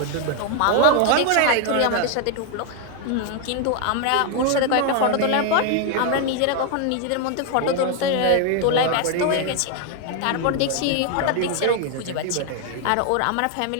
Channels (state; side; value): different; both; correlation 0.01